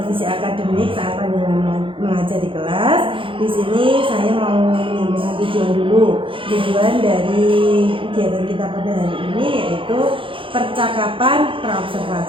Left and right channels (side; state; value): left; late; 0.25 ms